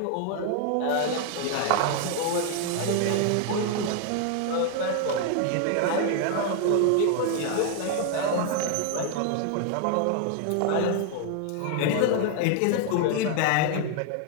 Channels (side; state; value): both; different; correlation 0.00